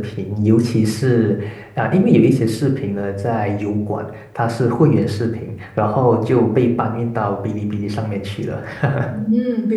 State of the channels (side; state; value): both; identical; correlation 1.00